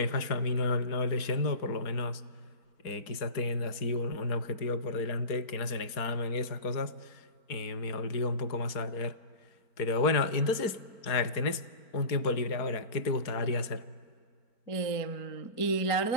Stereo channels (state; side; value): late; right; 4.8 ms